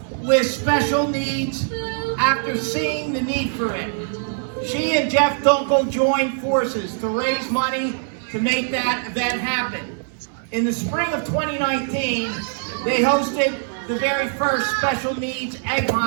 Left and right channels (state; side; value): silent; left; 64 dB below the other